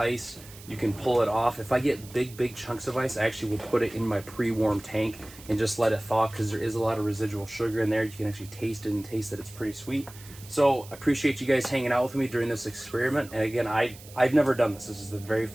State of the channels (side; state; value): right; noise; hiss, 19 dB below the sound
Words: you can pull it off. If I get big chunks of ice, I actually will put it in my pre-warm tank and just let it thaw because there is a lot of residual sugar in there. You can actually taste it and taste that it's pretty sweet. So I appreciate you guys hanging out with me during this experiment. And again, I've never done this. This is the very